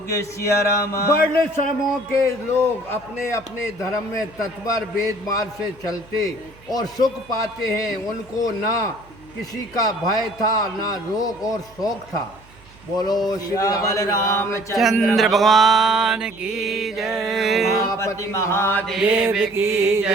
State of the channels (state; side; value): noise; right; hum, 26 dB below the sound